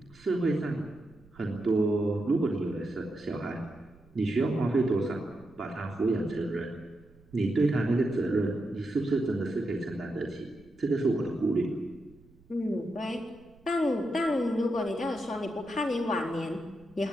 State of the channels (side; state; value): right; noise; rumble, 27 dB below the sound